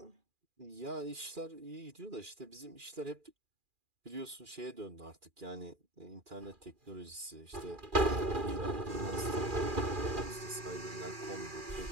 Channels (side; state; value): left; late; 2.4 ms